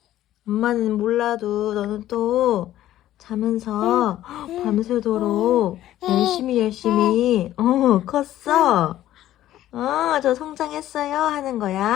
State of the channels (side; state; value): right; quieter; 13.4 dB